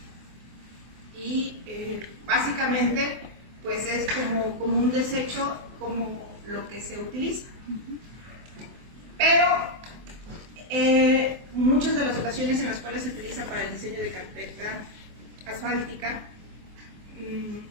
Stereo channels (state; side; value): late; left; 24 ms